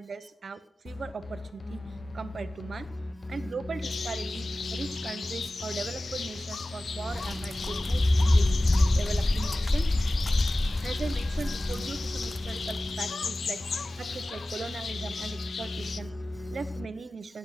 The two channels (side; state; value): both; normal; correlation 0.96